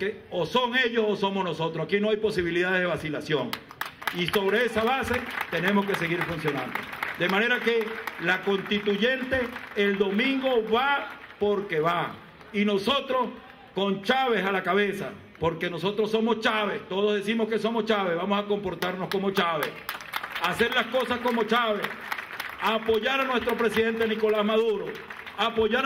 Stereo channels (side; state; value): both; identical; correlation 1.00